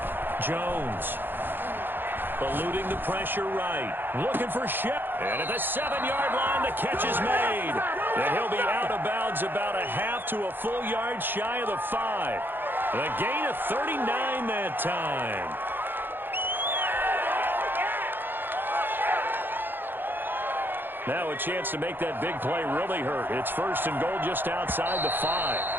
Jones. Eluding the pressure right. Looking for Shep. And at the 7-yard line, the catch is made. And he'll be out of bounds about a half to a full yard shy of the 5. The gain of 39 that time. Now a chance to make that big play really hurt. It's 1st and goal just outside the 5.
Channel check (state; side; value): late; left; 0.098 ms